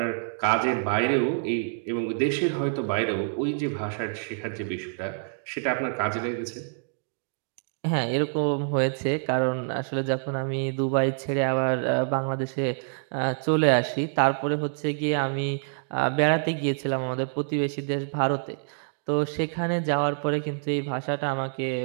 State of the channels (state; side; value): silent; left; digital silence